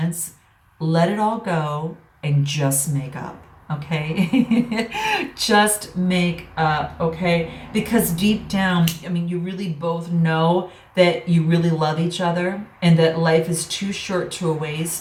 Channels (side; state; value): both; identical; correlation 1.00